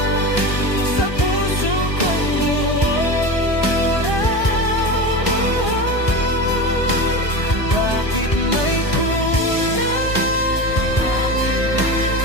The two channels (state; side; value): late; right; 1.4 ms